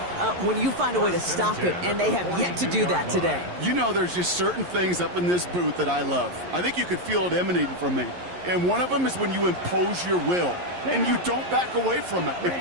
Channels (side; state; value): left; late; 11 ms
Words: when you find a way to stop it, and they have yet to do that today. You know, there's just certain things up in this booth that I love. I think you could feel it emanating from me. And one of them is when you impose your will, and you don't back away from it. If